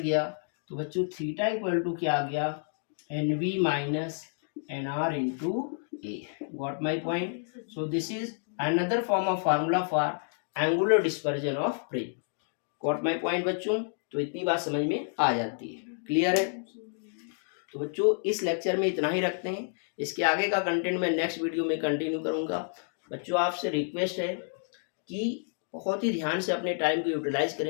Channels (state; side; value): silent; right; 58 dB below the other